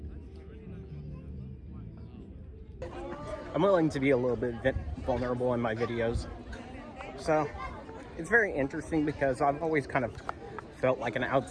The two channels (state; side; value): identical; both; correlation 1.00